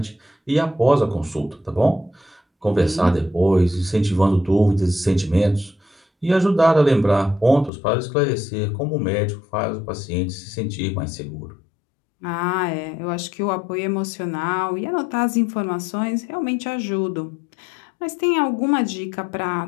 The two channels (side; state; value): right; drops out; at 7.7 s